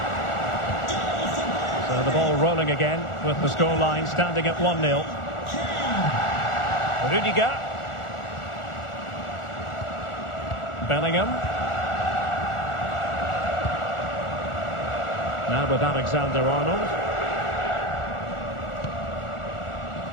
So the ball rolling again with the scoreline standing at 1-0. Rudiger. Bellingham. Now with Alexander-Arnold.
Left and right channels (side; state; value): right; late; 1.4 ms